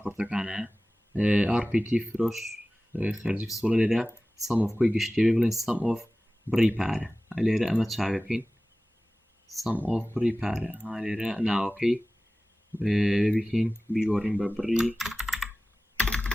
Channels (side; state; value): both; normal; correlation 0.97